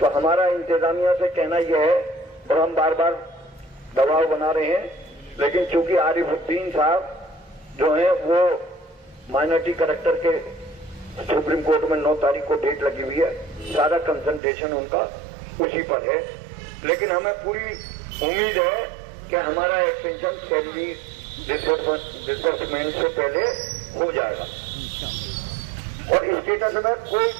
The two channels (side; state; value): left; drops out; at 14.4 s